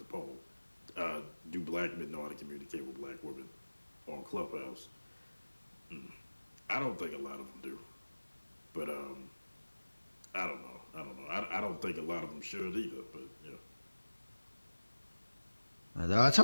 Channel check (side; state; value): both; inverted; correlation -1.00